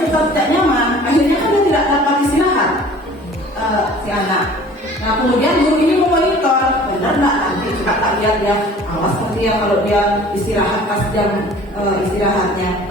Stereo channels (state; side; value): normal; both; correlation 0.48